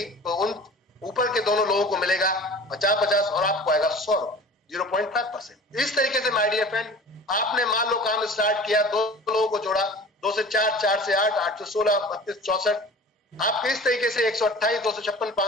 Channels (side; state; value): both; normal; correlation 0.41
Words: तो उन ऊपर के दोनों लोगों को मिलेगा 50-50 और आपको आएगा 100, 0.5%। इस तरीके से माय डियर फ्रेंड, आपने मान लो काम स्टार्ट किया, 2 लोगों को जोड़ा, 2 से 4, 4 से 8, 8 से 16, 32, 64, आपके इस तरीके से 128, 256,